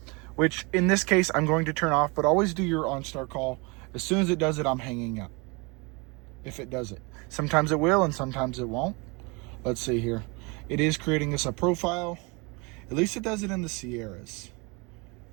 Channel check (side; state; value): left; quieter; 28.9 dB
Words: which in this case, I'm going to turn off, but always do your OnStar call. As soon as it does it, I'm hanging up. If it does it. Sometimes it will and sometimes it won't. Let's see here. It is creating us a profile. At least it does it in the Sierras.